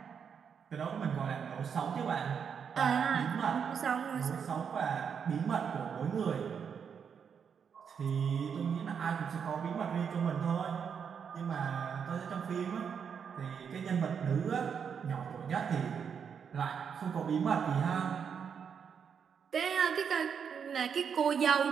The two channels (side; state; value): left; quieter; 7.0 dB